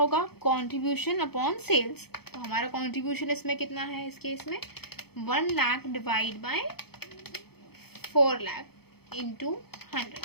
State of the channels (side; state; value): right; late; 0.96 ms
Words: कंट्रीब्यूशन अपॉन सेल्स। तो हमारा कंट्रीब्यूशन इसमें कितना है, इस केस में 1 lakh divide by 4 lakh into 100।